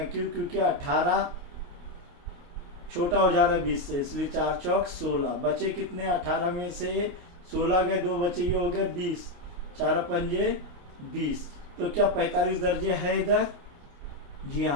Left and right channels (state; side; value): late; left; 28 ms